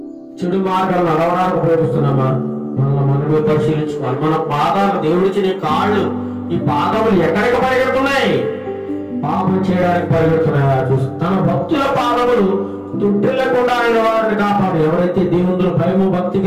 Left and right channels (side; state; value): both; identical; correlation 1.00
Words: చెడు మార్గాలు నడవడానికి ఉపయోగిస్తున్నామా? మనమే పరిశీలించుకోవాలి. మన పాదాలు, దేవుడిచ్చిన కాళ్ళు, ఈ పాదములు ఎక్కడికి పరిగెడుతున్నాయి? పాపం చేయడానికి పరిగెడుతున్నాయా చూసి తన భక్తుల పాదములు తుట్టిల్లకుండా ఆయన వారిని కాపాడు. ఎవరైతే దేవుని భయము భక్తి